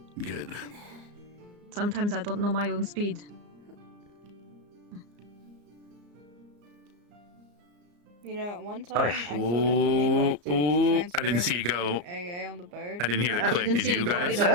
Good. Sometimes I don't know my own speed. You know, one time I filled up I didn't see you go. AA on the bird. I didn't hear the click. Did you guys?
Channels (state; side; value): late; left; 34 ms